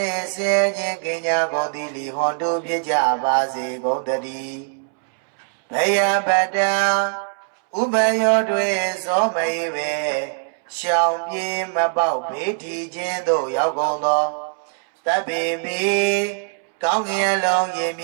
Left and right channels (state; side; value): silent; left; 65 dB below the other